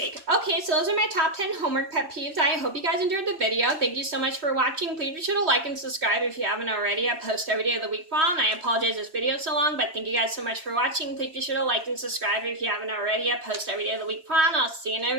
Okay, so those are my top 10 homework pet peeves. I hope you guys enjoyed the video. Thank you so much for watching. Please be sure to like and subscribe if you haven't already. I post every day of the week file, and I apologize this video is so long, but thank you guys so much for watching. Please be sure to like and subscribe if you haven't already. I post every day of the week file, and I'll see you in a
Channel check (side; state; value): left; late; 3.2 ms